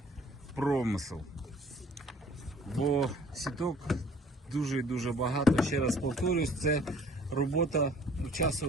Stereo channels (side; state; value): both; normal; correlation 0.54